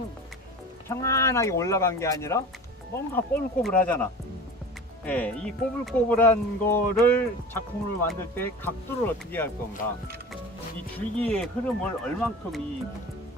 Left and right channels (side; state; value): both; normal; correlation 0.36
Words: 평안하게 올라간 게 아니라 뭔가 꼬불꼬불하잖아. 예, 이 꼬불꼬불한 거를 작품으로 만들 때 각도를 어떻게 할 건가, 이 줄기의 흐름을 얼만큼 이